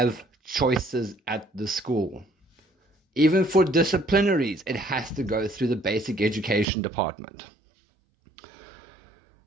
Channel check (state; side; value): drops out; left; at 6.7 s